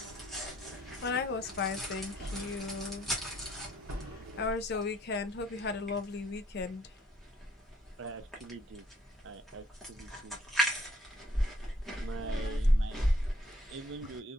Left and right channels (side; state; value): both; normal; correlation 0.64